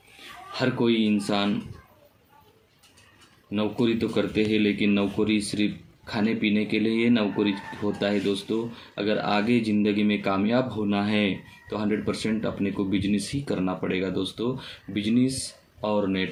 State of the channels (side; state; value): both; identical; correlation 1.00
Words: हर कोई इंसान नौकरी तो करते हैं, लेकिन नौकरी सिर्फ खाने पीने के लिए ये नौकरी होता है दोस्तों। अगर आगे ज़िंदगी में कामयाब होना है तो 100% अपने को बिजनेस ही करना पड़ेगा दोस्तों। बिजनेस और